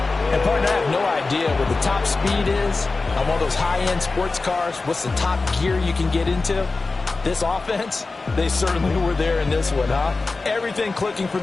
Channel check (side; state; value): right; quieter; 3.7 dB